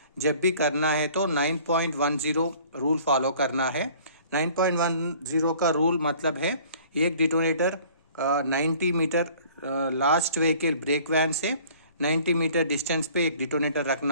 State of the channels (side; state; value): both; inverted; correlation -0.52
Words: जब भी करना है तो 9.10 रूल फॉलो करना है. 9.10 का रूल मतलब है एक detonator 90 metre last vehicle brake van से 90 मीटर डिस्टेंस पे एक डिटोनेटर